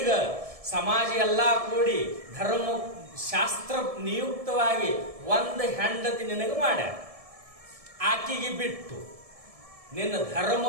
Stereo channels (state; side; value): late; left; 1.7 ms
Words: ಸಮಾಜ ಎಲ್ಲಾ ಕೂಡಿ ಧರ್ಮ ಶಾಸ್ತ್ರ ನಿಯುಕ್ತವಾಗಿ ಒಂದು ಹೆಂಡತಿ ನಿನಗೆ ಮಾಡ್ಯಾರ. ಆಕಿಗೆ ಬಿಟ್ಟು ನಿನ್ನ ಧರ್ಮ